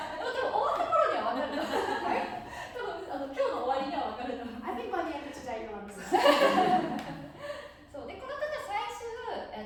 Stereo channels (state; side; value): identical; both; correlation 1.00